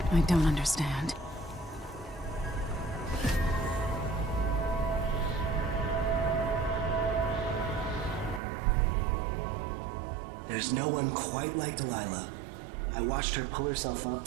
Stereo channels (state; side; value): drops out; left; at 8.4 s